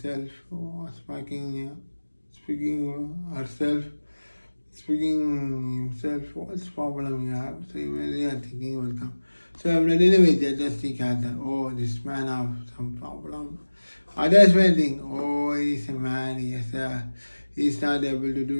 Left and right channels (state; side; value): inverted; both; correlation -1.00